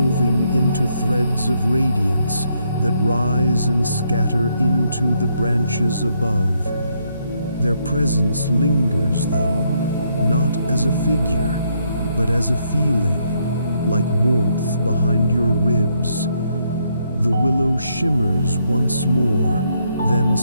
into threads of radiance that rise and scatter into the branches above. Their presence lingers, though, not as a figure, but as a feeling, like warmth behind your ribs. The willow shimmers once more, then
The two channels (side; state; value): both; inverted; correlation -0.74